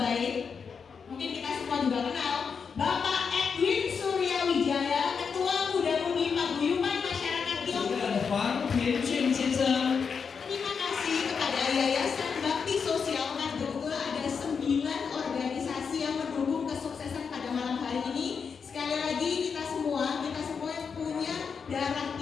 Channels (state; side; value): quieter; right; 6.0 dB